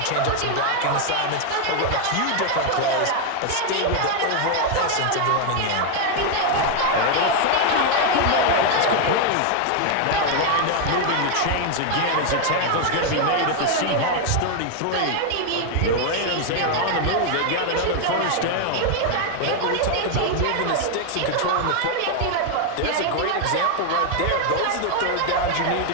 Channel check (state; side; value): different; both; correlation 0.00